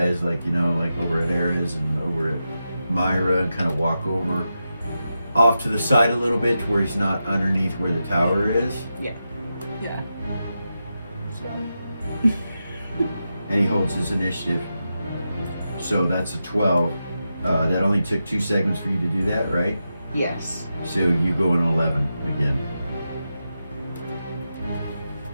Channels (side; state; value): both; inverted; correlation -0.89